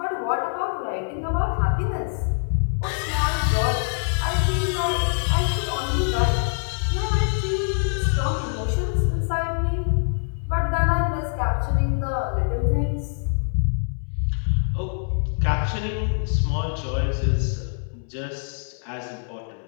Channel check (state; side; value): silent; right; 62 dB below the other